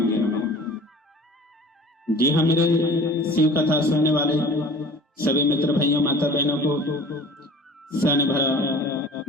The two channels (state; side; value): normal; both; correlation 0.44